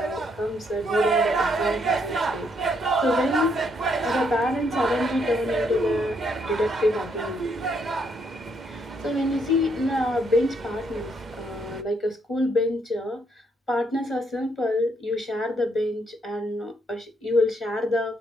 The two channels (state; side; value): normal; both; correlation 0.73